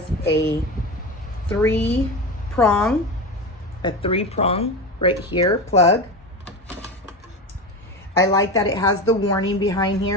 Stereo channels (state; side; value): normal; both; correlation 0.23